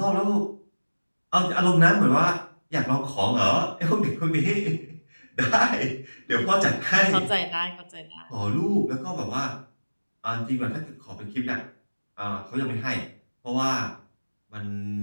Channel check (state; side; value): inverted; both; correlation -1.00